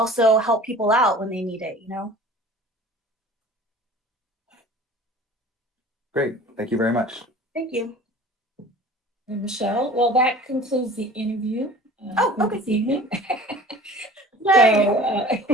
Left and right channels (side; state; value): both; normal; correlation 0.43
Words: help people out when they need it, Great, thank you very much. Thank you. And Michelle, well, that concludes the interview for Okay. this evening. Yay.